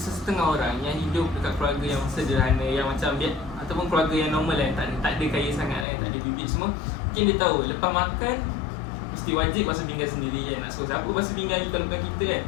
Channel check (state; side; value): drops out; right; at 5.9 s